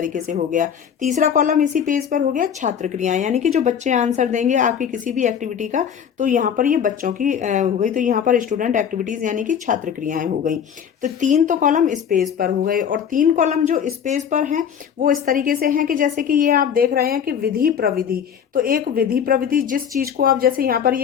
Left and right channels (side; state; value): right; quieter; 8.1 dB